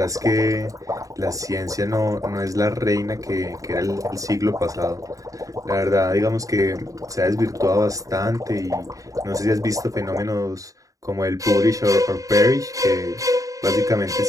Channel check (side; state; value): left; late; 0.16 ms